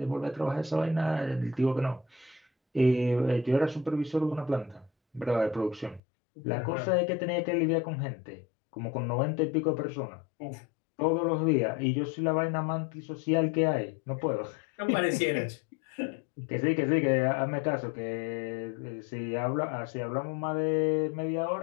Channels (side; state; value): right; drops out; at 6.0 s